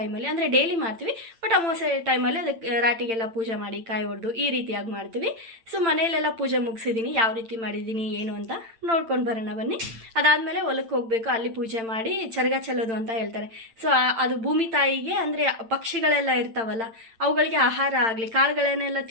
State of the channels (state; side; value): late; left; 8.9 ms